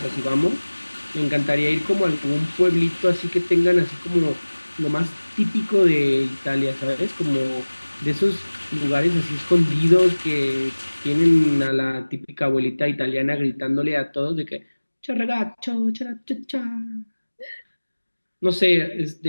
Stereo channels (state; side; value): inverted; both; correlation -1.00